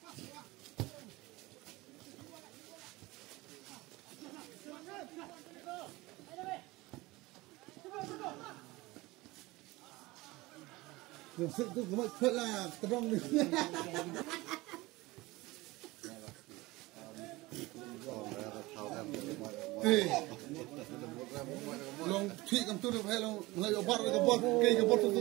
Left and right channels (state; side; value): quieter; left; 20.9 dB